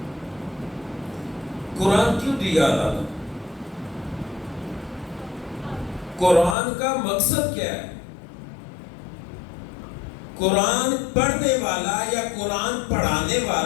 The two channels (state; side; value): drops out; right; at 6.6 s